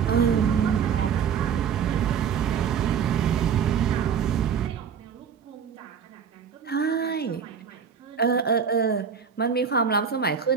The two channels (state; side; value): quieter; left; 7.0 dB